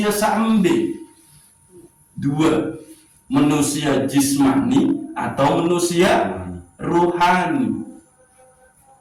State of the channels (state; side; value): identical; both; correlation 1.00